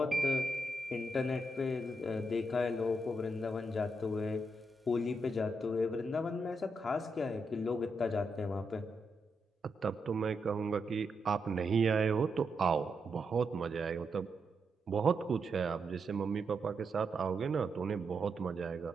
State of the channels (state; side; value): normal; both; correlation 0.83